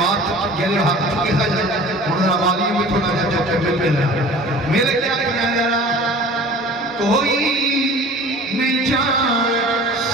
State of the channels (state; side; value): normal; both; correlation 0.43